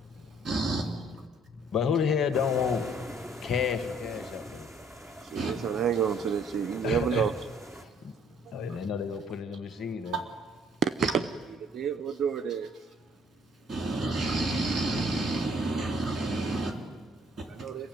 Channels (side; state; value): both; normal; correlation 0.61